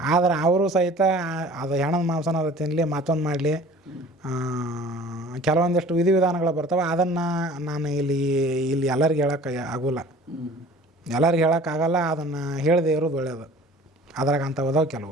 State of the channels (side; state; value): both; normal; correlation 0.46